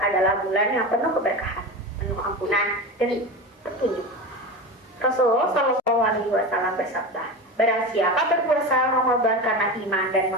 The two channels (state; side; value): normal; both; correlation 0.25